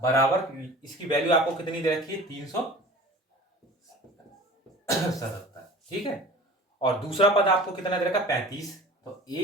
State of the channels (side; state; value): both; normal; correlation 0.41